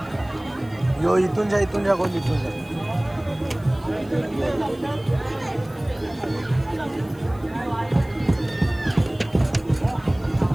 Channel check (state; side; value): noise; left; hiss, 27 dB below the sound